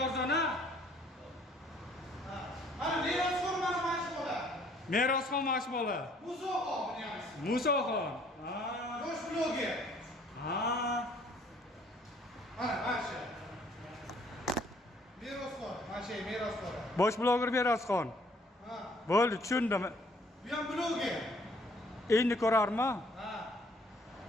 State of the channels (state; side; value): normal; both; correlation 0.60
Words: arzona. Mana merosxon mana mashbola. Merosxon mashbola. Musoxon bunyamiz. Musoxon. Ha. Bosh bloger. Ha. Mana masha. Merosxon, masha merosxon. Bosh bloger Merosxon. Ha. Bo'ldi, tushundim. Bu ham bloger. Endi ko'rarmi? Ha.